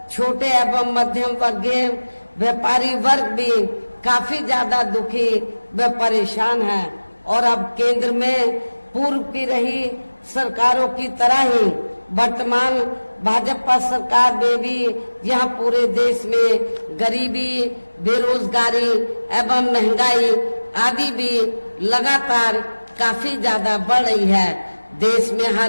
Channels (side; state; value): both; inverted; correlation -1.00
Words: छोटे एवं मध्यम वर्गीय व्यापारी वर्ग भी काफी ज्यादा दुखी व परेशान है। और अब केंद्र में पूर्व की रही सरकारों की तरह ही वर्तमान भाजपा सरकार में भी यहाँ पूरे देश में गरीबी, बेरोजगारी एवं महंगाई आदि भी लगातार काफी ज्यादा बढ़ रही है। देश में